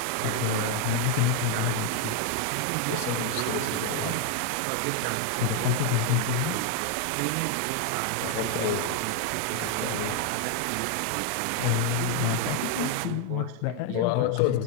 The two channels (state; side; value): different; both; correlation 0.00